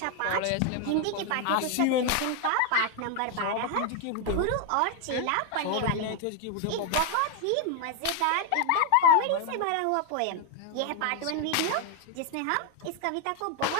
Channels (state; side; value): different; both; correlation 0.01